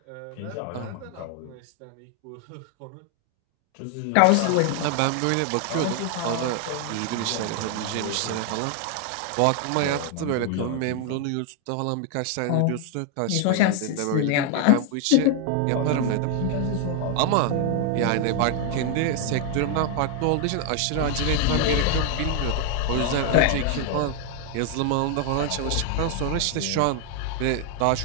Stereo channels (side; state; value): both; different; correlation 0.00